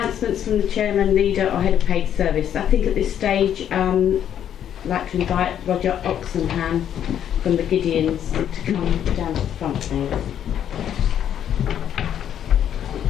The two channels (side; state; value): right; quieter; 9.8 dB